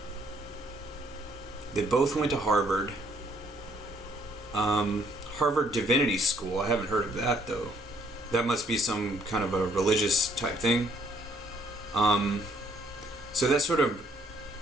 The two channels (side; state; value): both; normal; correlation 0.66